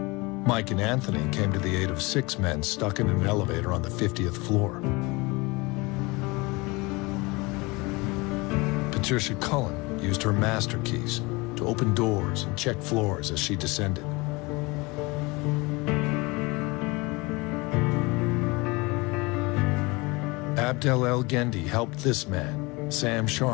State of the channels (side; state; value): right; quieter; 25.0 dB